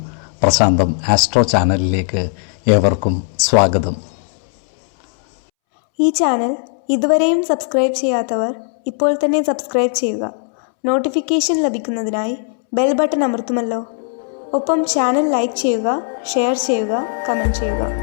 പ്രശാന്തം ആസ്ട്രോ ചാനലിലേക്ക് ഏവർക്കും സ്വാഗതം. ഈ ചാനൽ ഇതുവരെയും സബ്സ്ക്രൈബ് ചെയ്യാത്തവർ ഇപ്പോൾ തന്നെ സബ്സ്ക്രൈബ് ചെയ്യുക. നോട്ടിഫിക്കേഷൻ ലഭിക്കുന്നതിനായി ബെൽ ബട്ടൺ അമർത്തുമല്ലോ. ഒപ്പം ചാനൽ ലൈക്ക് ചെയ്യുക, ഷെയർ ചെയ്യുക, കമൻറ്റ് ചെയ്യുക.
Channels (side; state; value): right; silent; 68 dB below the other